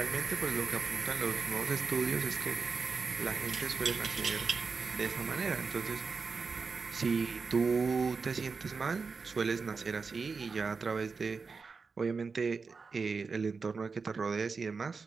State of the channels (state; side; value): quieter; left; 4.8 dB